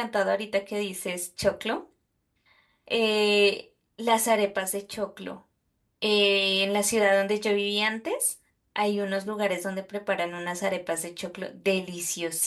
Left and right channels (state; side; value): identical; both; correlation 1.00